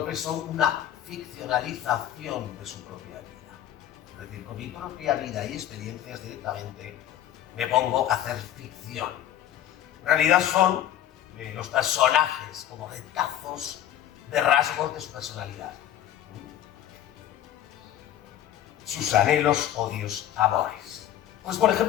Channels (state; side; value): quieter; right; 11.5 dB